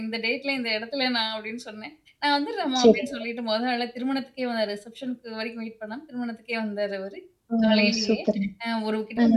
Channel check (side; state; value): both; identical; correlation 1.00